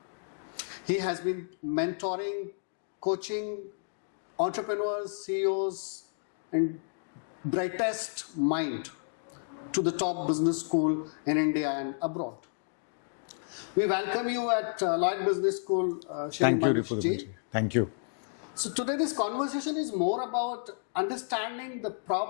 He has been mentoring, coaching entrepreneurs, CEOs, and brightest mind to the top business school in India and abroad. We welcome you at Lloyd Business School, Shri Manish ji. Thank you. So today this conversation is more about understanding the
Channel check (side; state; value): right; silent; digital silence